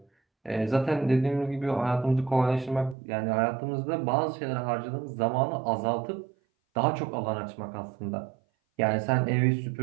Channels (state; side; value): drops out; left; at 3.0 s